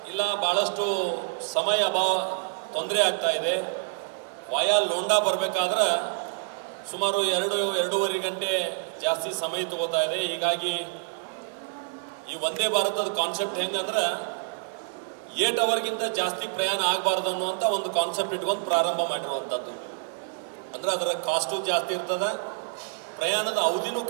ಇಲ್ಲ ಭಾಳಷ್ಟು ಸಮಯ ತೊಂದರೆ ಆಗ್ತಾ ಇದೆ, ವಾಯಾ ಲೋಂಡಾ ಬರಬೇಕಾದ್ರೆ ಸುಮಾರು 2-2.5 ಗಂಟೆ ಜಾಸ್ತಿ ಸಮಯ ತಗೋತಾ ಇದೆ. ಹೀಗಾಗಿ ಈ ವಂದೇ ಭಾರತದ ಕಾನ್ಸೆಪ್ಟ್ ಹೆಂಗಂದ್ರೆ 8 ಅವರ್ಗಿಂತ ಜಾಸ್ತಿ ಪ್ರಯಾಣ ಆಗಬಾರ್ದು ಅನ್ನುವಂಥ ಒಂದು ಕಾನ್ಸೆಪ್ಟ್ ಇಟ್ಕೊಂಡು ಪ್ರಾರಂಭ ಮಾಡಿರುವಂಥದ್ದು. ಅಂದರೆ ಅದರ ಕಾಸ್ಟು ಜಾಸ್ತಿ ಇರ್ತದೆ, ಪ್ರಯಾಣದ ಅವಧಿನೂ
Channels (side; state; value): left; silent; 60 dB below the other